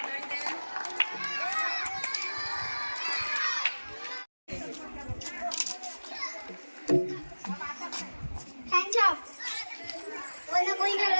थैंक्स आप, वरना कोई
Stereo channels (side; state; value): both; inverted; correlation -1.00